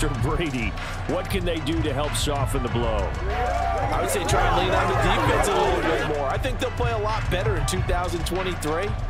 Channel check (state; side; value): identical; both; correlation 1.00